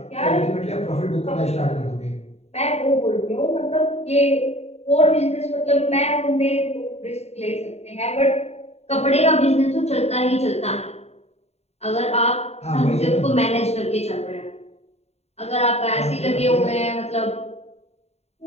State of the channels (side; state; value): right; late; 0.31 ms